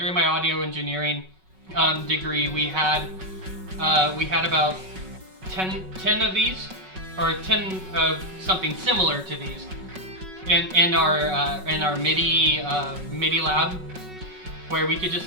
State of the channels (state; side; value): late; left; 5.4 ms